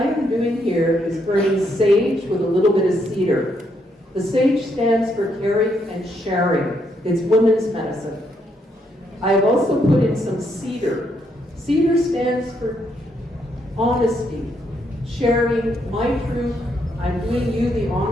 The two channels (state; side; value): normal; both; correlation 0.75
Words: am doing here is burning sage with a little bit of cedar. The sage stands for caring and sharing. It's women's medicine. I've also put in some cedar. Cedar stands for honesty, sharing my truth. I'm doing you the